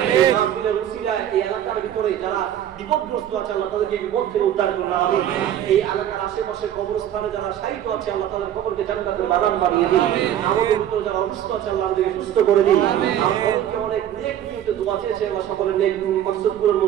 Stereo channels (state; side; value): quieter; left; 10.9 dB